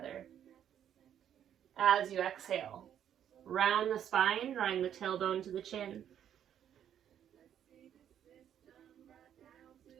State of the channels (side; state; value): left; quieter; 9.8 dB